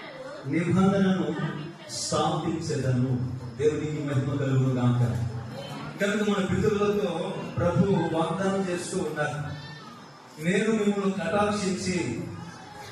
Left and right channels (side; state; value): both; identical; correlation 1.00